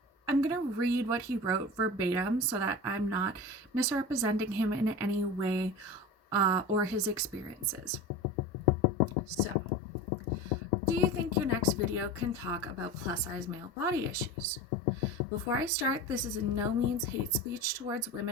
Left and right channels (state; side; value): normal; both; correlation 0.30